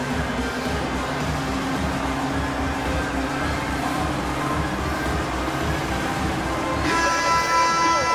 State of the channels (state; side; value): identical; both; correlation 1.00